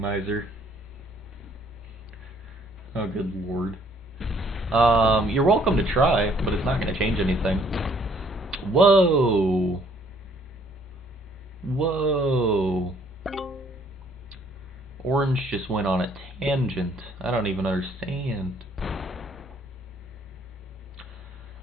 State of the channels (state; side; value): normal; both; correlation 0.63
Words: Oh, good lord. You're welcome to try, but it's not going to change anything. Whoa. Whoa. Orange just went on a tangent. I don't even understand.